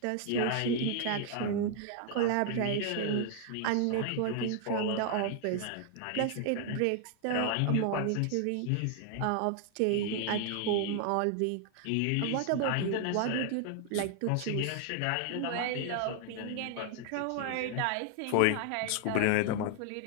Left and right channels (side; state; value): both; different; correlation 0.00